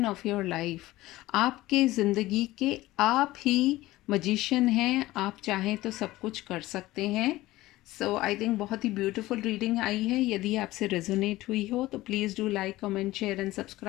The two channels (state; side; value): quieter; right; 17.5 dB